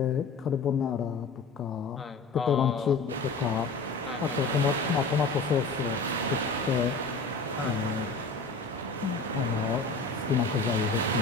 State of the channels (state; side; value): quieter; right; 3.9 dB